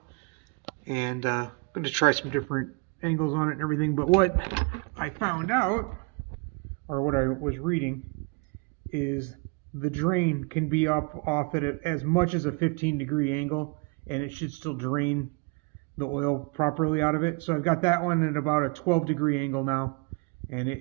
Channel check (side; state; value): left; quieter; 31.2 dB